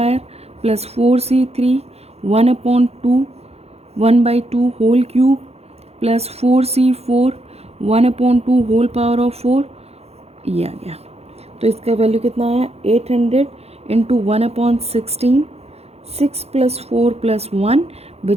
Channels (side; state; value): left; late; 0.30 ms